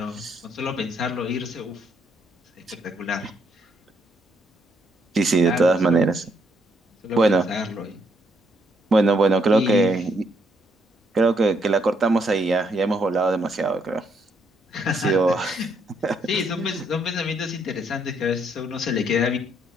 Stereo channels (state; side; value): normal; both; correlation 0.73